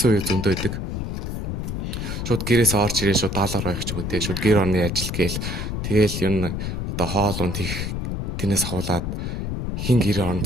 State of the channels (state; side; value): noise; left; rumble, 3 dB below the sound